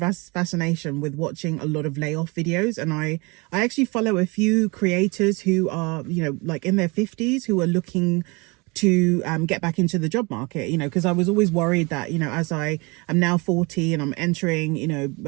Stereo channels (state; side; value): quieter; left; 27.6 dB